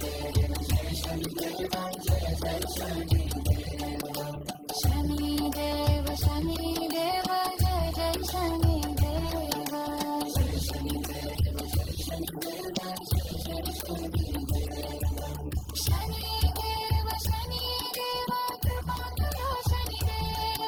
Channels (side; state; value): both; identical; correlation 1.00